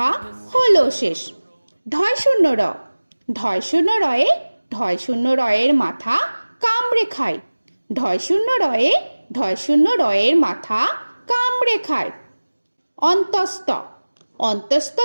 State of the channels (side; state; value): both; inverted; correlation -1.00